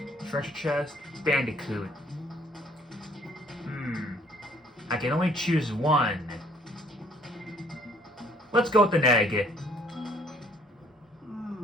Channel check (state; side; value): normal; both; correlation 0.61